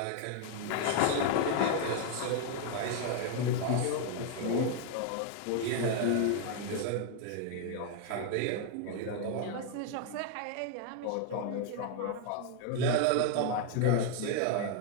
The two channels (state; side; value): different; both; correlation 0.00